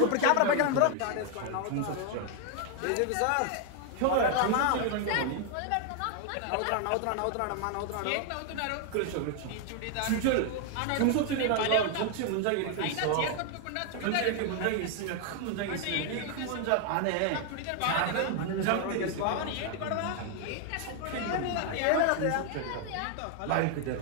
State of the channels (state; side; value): different; both; correlation 0.00